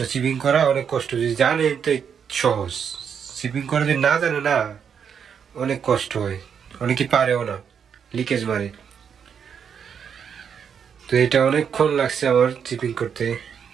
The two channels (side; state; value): left; quieter; 7.4 dB